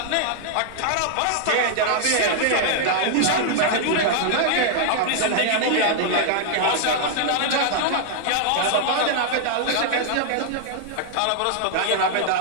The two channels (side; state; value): both; different; correlation -0.01